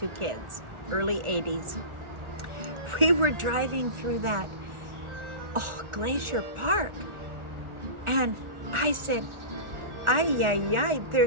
kids, early 80s. We were driving through that, Glacier Park. And I said, ay,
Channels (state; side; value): late; left; 1.4 ms